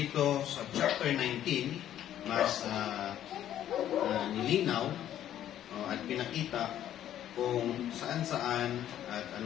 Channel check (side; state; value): right; quieter; 11.4 dB